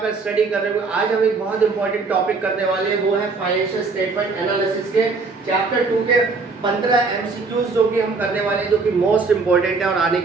स्टडी कर रहे होंगे। आज हम एक बहुत इंपॉर्टेंट टॉपिक करने वाले हैं, वो है फाइनेंशियल स्टेटमेंट एनालिसिस के चैप्टर 2 के 15 एमसीक्यूज जो कि हम करने वाले हैं, जो कि मोस्ट इंपॉर्टेंट है और आने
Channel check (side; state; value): left; quieter; 4.2 dB